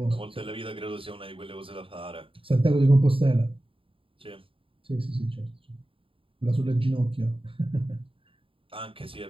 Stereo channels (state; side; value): late; left; 0.26 ms